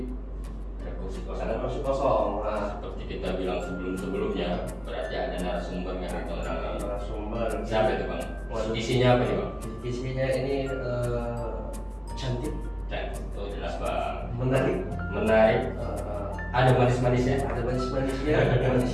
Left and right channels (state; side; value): identical; both; correlation 1.00